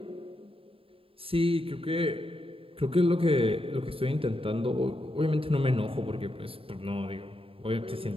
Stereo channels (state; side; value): late; left; 0.27 ms